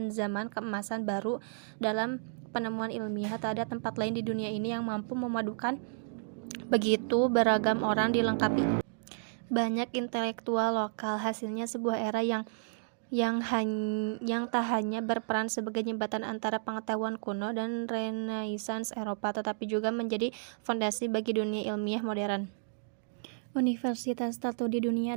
zaman keemasan baru dalam penemuan ilmiah. Tak ada tempat lain di dunia ini yang mampu memadukan begitu beragam orang dilengkapi banyak intelektual lokal. Hasilnya sebuah era yang tak hanya berperan sebagai jembatan antara pengetahuan kuno dan Renaissance Eropa, tetapi juga menjadi fondasi bagi dunia ilmiah modern. Universitas tertua di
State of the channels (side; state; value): left; silent; digital silence